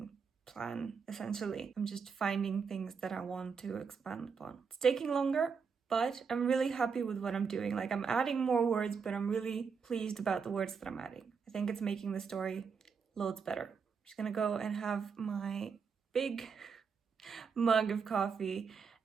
plan, essentially. I'm just finding things that I want to expand upon. It's taking longer, but I'm really happy with what I'm doing. Like, I'm adding more words, but I'm really pleased about the words that I'm adding. I think it's making the story loads better. I'm just gonna go and have my big mug of coffee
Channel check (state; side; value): quieter; left; 5.8 dB